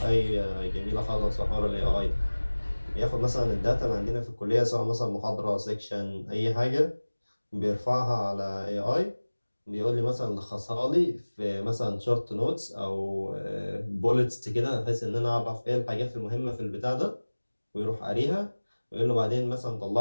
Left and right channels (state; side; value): inverted; both; correlation -1.00